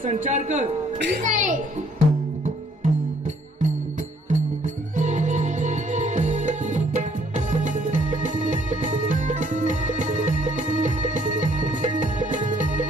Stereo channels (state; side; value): normal; both; correlation 0.64